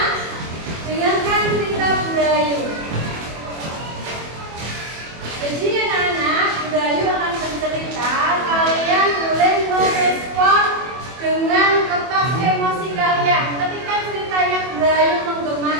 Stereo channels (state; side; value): late; left; 24 ms